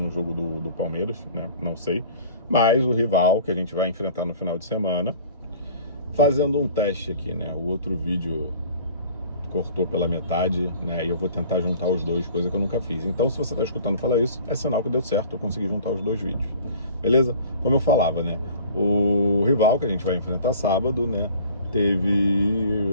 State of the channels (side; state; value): both; inverted; correlation -0.48